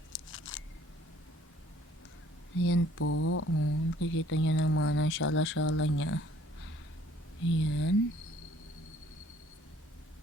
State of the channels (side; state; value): both; normal; correlation 0.58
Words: Ayan po. Nakikita nyo naman ang shala-shala niya. Ayan.